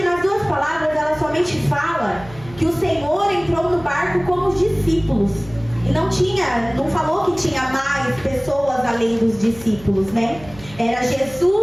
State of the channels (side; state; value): right; noise; hum, 19 dB below the sound